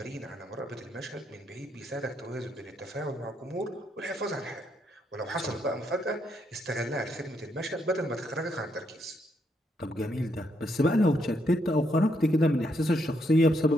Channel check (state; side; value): normal; both; correlation 0.76